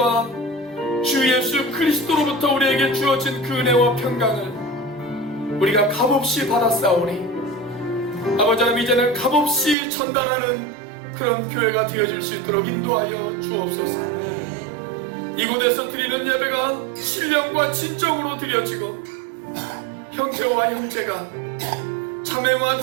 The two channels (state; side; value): drops out; left; at 9.8 s